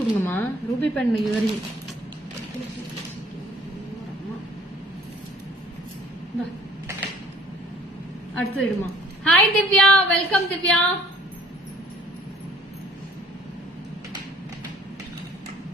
ரூபி பெண் இயரிங். அடுத்து இடுமா. Hi Divya, welcome Divya.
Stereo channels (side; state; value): both; normal; correlation 0.55